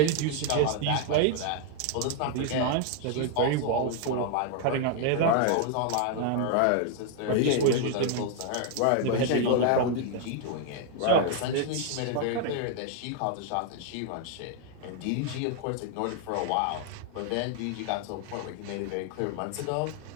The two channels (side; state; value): both; different; correlation 0.00